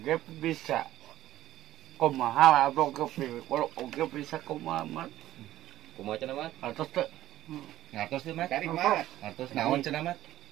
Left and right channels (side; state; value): left; quieter; 14.1 dB